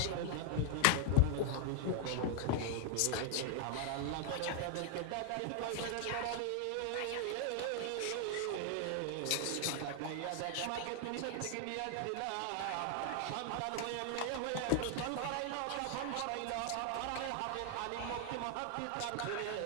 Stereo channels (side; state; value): both; different; correlation 0.00